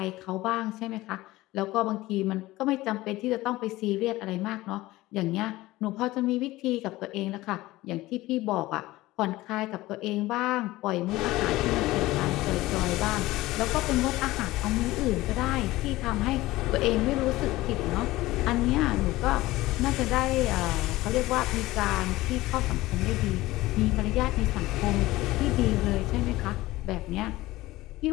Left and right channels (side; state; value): right; quieter; 18.2 dB